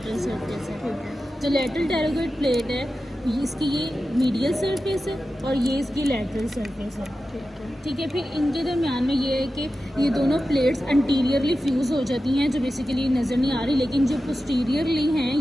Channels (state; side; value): normal; both; correlation 0.93